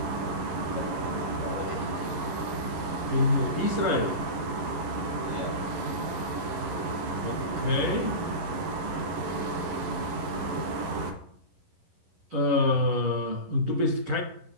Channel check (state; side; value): late; left; 11 ms